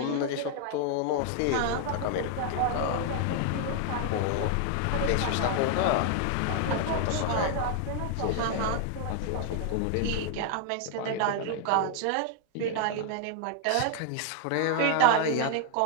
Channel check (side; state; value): both; different; correlation 0.00